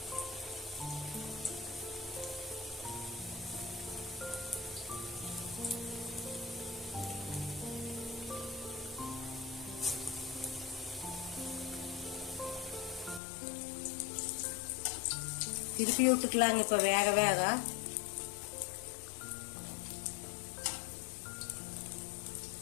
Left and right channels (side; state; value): right; drops out; at 13.2 s